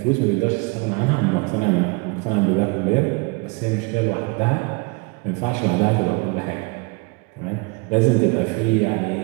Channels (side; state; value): left; quieter; 28.7 dB